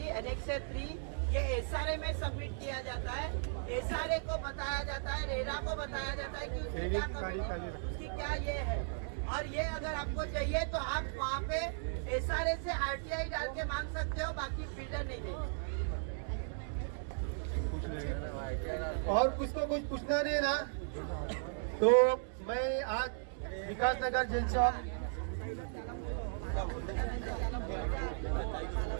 एनेक्सर 3 ये एसआरए में सबमिट किया जाता है। एसआरए को बताया जाता है, रेरा को बताया जाता है कि उसकी क्या कमी, उसकी क्या ये है। और ये अगर आपको चाहिए तो आप वहाँ पे एसआरए से आरटीआई डाल के मांग सकते हो, बाकी बिल्डर नहीं देंगे। और कुछ तो कुछ पूछना नहीं ना, तो मैं आज विकास नगर जेल चौक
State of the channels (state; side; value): silent; left; digital silence